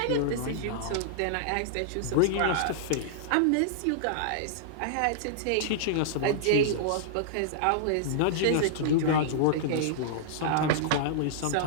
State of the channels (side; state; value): both; different; correlation -0.02